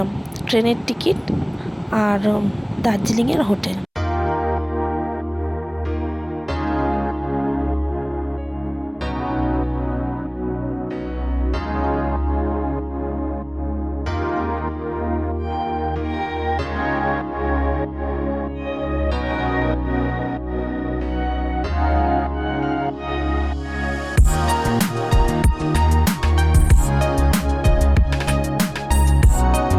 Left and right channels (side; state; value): both; identical; correlation 1.00